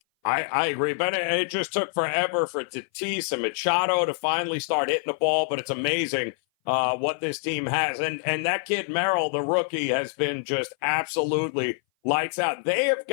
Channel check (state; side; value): silent; right; 58 dB below the other